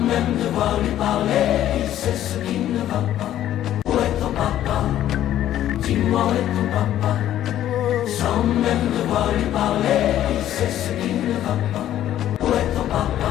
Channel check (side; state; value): right; quieter; 12.1 dB